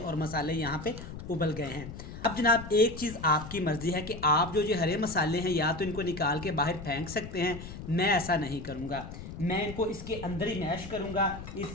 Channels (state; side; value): noise; left; rumble, 11 dB below the sound